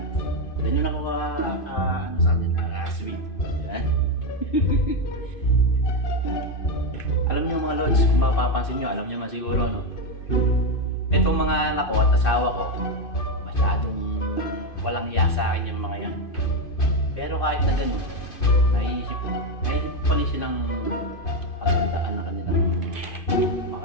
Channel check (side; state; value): right; late; 2.5 ms